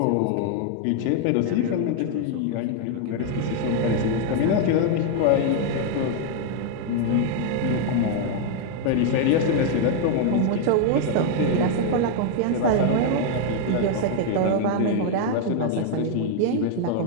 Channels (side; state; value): both; different; correlation 0.00